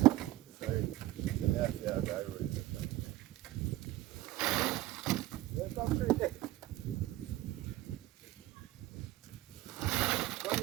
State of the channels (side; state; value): left; quieter; 16.2 dB